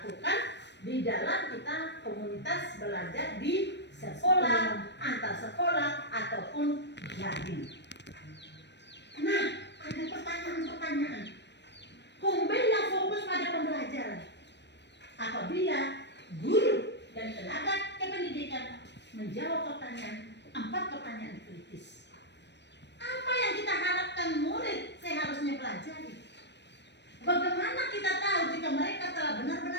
di dalam kita komunitas belajar di sekolah, antar sekolah, ataupun daring. Nah, ada pertanyaan-pertanyaan. Kombel yang fokus pada pembelajaran. Apabila guru dan tenaga kependidikan menjawab pertanyaan, 4 pertanyaan kritis. Apa yang kita harapkan murid seharusnya pelajari? Bagaimana kita tahu jika mereka telah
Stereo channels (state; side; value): late; right; 0.50 ms